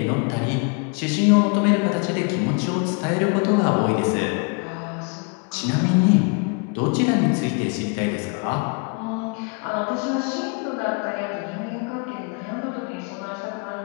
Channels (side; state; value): right; quieter; 34.2 dB